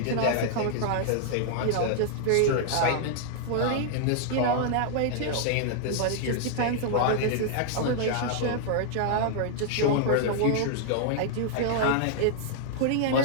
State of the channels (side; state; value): both; different; correlation -0.01